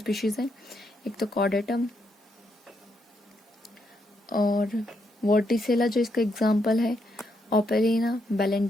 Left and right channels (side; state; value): both; normal; correlation 0.78